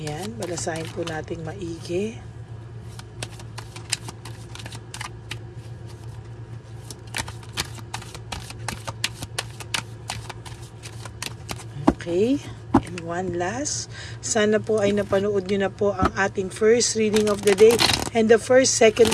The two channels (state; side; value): identical; both; correlation 1.00